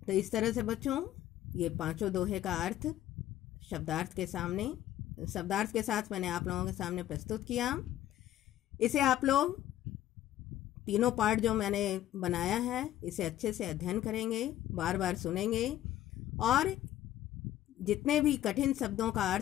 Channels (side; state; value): right; quieter; 13.0 dB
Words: तो इस तरह से बच्चों, ये पांचों दोहे का अर्थ शब्दार्थ के साथ मैंने आप लोगों के सामने प्रस्तुत किया। इसे आप लोग तीनों पार्ट जो मैंने बनाया है इसे अच्छे से अध्ययन करेंगे, बार बार सुनेंगे और जितने भी कठिन शब्दों का